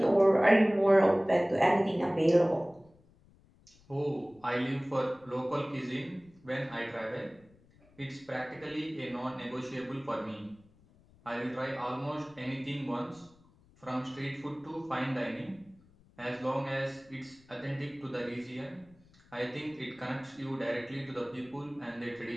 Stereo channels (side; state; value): left; noise; rumble, 29 dB below the sound